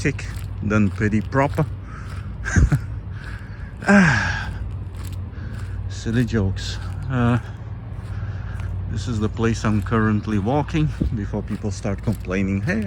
than peri-proper. Silly jokes. This is the place I'm currently walking before people start complaining. Hey,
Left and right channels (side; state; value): both; identical; correlation 1.00